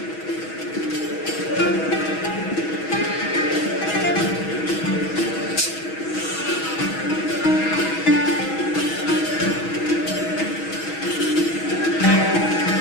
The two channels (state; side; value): late; right; 6.2 ms